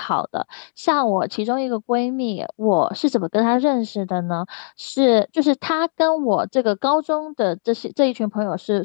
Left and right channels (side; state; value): right; silent; 63 dB below the other